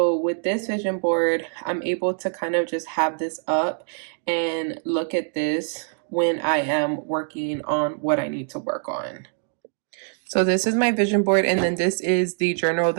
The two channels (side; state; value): left; silent; digital silence